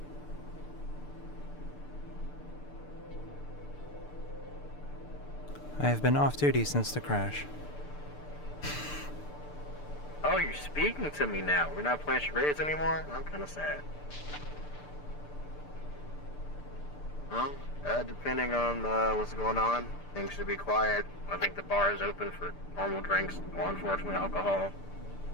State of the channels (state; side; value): late; right; 6.8 ms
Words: I have been off duty since the crash. Oh, you're speaking to me now. We're not playing charades anymore? I'm kind of sad. Well, depending on what's going on, things should be quiet. I think the bar is open for normal drinks, or unfortunately alcohol.